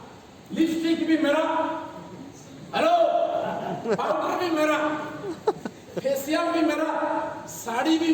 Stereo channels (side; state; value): both; identical; correlation 1.00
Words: लिपस्टिक भी मेरा, हेलो, पाउडर भी मेरा, फेशियल भी मेरा, साड़ी भी